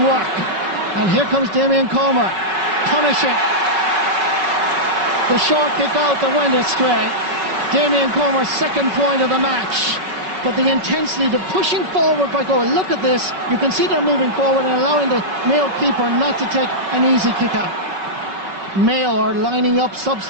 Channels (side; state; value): left; late; 5.3 ms